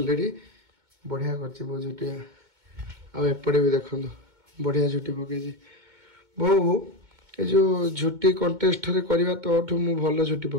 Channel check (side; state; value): left; late; 2.2 ms